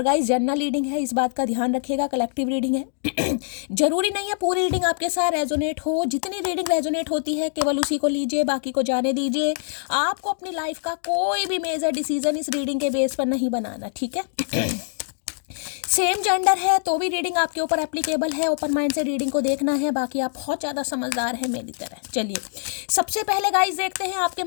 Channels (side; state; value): right; silent; digital silence